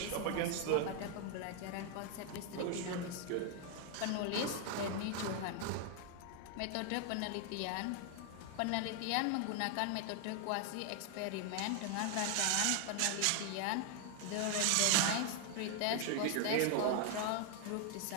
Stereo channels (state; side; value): different; both; correlation 0.00